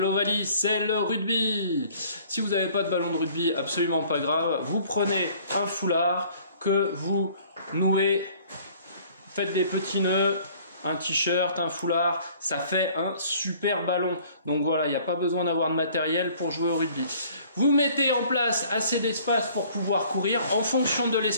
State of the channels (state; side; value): inverted; both; correlation -0.55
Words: c'est le rugby. Si vous n'avez pas de ballon de rugby, absolument pas grave, vous prenez un foulard que vous nouez, faites des petits nœuds, un t-shirt, un foulard, ça fait un super ballon. Donc voilà, il n'y a pas besoin d'avoir de matériel pour jouer au rugby. Vous mettez en place assez d'espace pour pouvoir courir. En fonction de